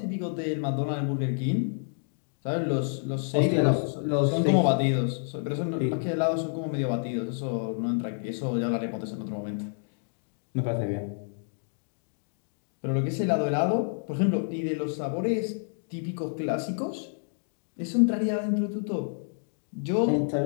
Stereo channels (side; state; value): right; silent; digital silence